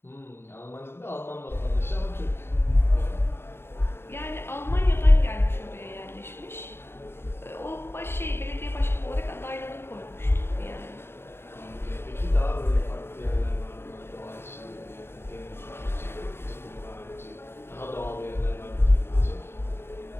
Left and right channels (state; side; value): late; right; 0.11 ms